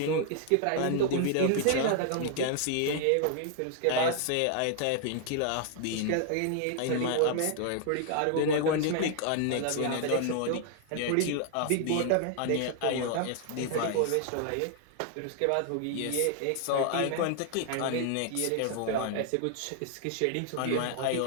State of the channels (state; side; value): different; both; correlation 0.00